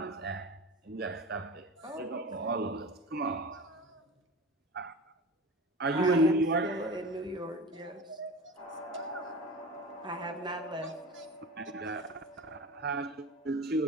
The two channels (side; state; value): both; normal; correlation 0.32